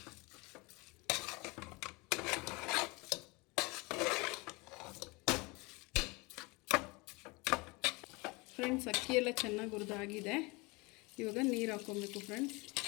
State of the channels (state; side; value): quieter; right; 26.0 dB